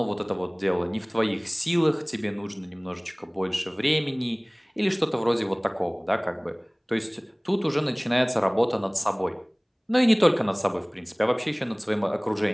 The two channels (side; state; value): both; identical; correlation 1.00